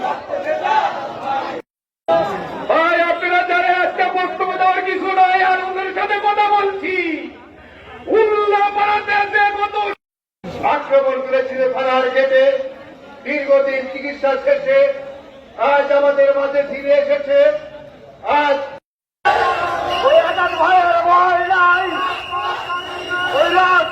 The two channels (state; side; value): identical; both; correlation 1.00